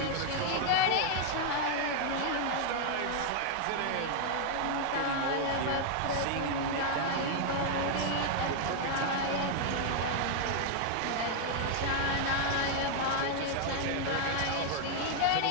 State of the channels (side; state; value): both; different; correlation 0.00